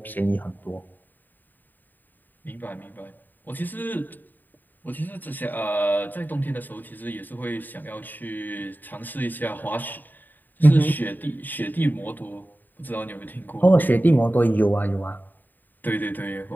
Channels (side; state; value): right; late; 0.089 ms